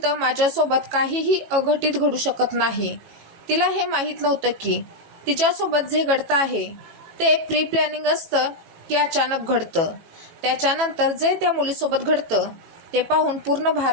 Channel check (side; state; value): left; late; 18 ms